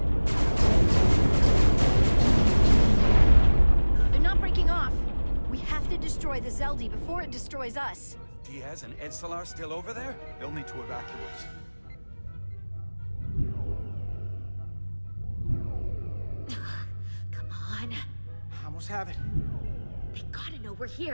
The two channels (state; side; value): inverted; both; correlation -1.00